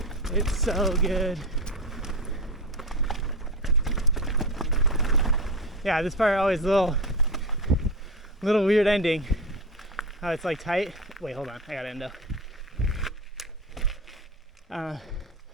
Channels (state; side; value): normal; both; correlation 0.22